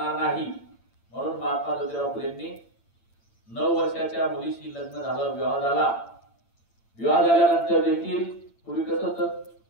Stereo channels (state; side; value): late; right; 8.8 ms